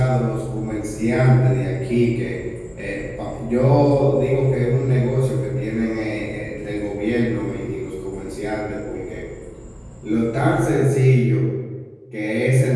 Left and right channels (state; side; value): identical; both; correlation 1.00